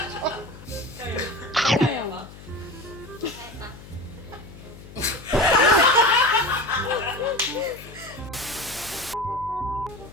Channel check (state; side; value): noise; left; hum, 17 dB below the sound